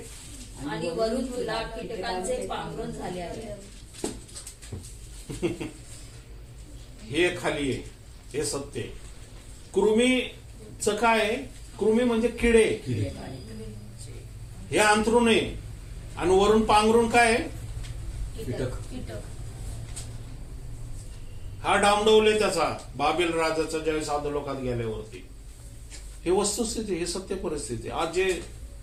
आणि वरून तुला कीटकांचे पांघरून झाले आहे. हे खाली आहे, हे सत्य. कृमीचं काय? कृमी म्हणजे किडे. हे अंथरून आहे आणि वरून पांघरून काय आहे? कीटक. हा डामडवले त्याचा बाबेल राजाचा ज्यावेळेस अधोलोकात गेल्यावरती. हे वस्तुस्थिती, हे सत्य परिस्थिती. आज जे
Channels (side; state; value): both; identical; correlation 1.00